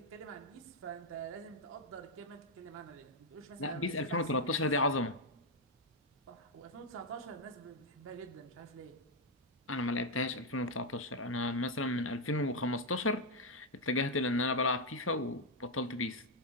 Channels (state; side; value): normal; both; correlation 0.01